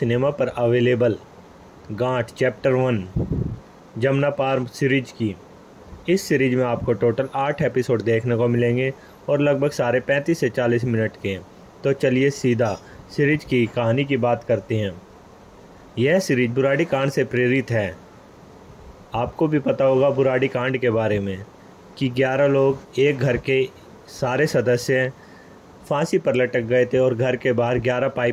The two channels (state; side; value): identical; both; correlation 1.00